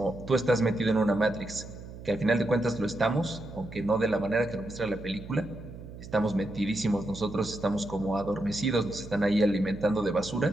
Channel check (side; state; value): right; noise; hum, 14 dB below the sound